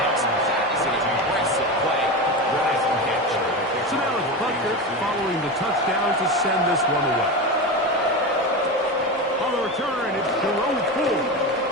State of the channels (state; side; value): normal; both; correlation 0.22